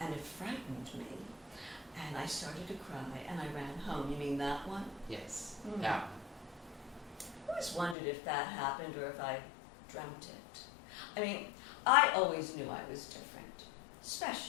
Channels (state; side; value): drops out; right; at 8.0 s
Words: And it frightened me. And I started to cry, and I ran home. You mean that one? Yes, Mm. that one. I always wondered if that happened or if I dreamt it. I mean, I always knew I was different,